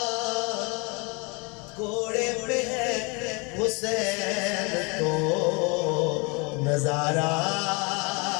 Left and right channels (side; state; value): right; quieter; 30.1 dB